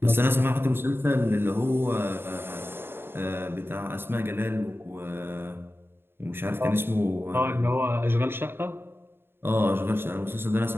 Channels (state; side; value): late; left; 0.11 ms